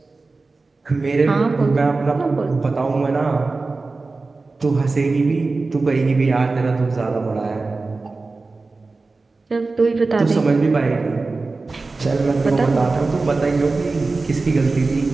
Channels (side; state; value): left; quieter; 3.7 dB